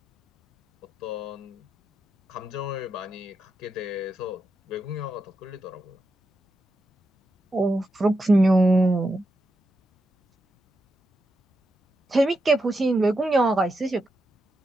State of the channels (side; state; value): both; normal; correlation 0.86